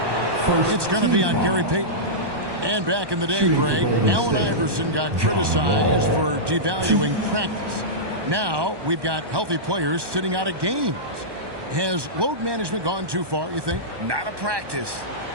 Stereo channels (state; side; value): late; left; 1.2 ms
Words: It's going to be on Gary Payton. And back in the day, Greg, Allen Iverson got criticized for devaluing practice. Now we've got healthy players sitting out of games. Has load management gone too far, you think? Not a practice,